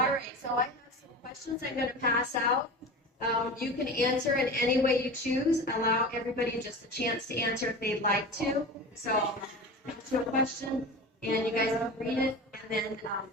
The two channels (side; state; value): both; normal; correlation 0.31